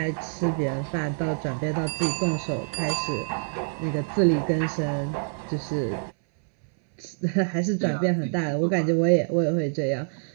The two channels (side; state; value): left; silent; 61 dB below the other